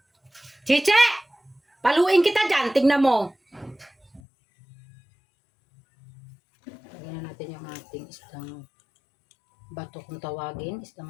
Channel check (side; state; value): right; drops out; at 4.2 s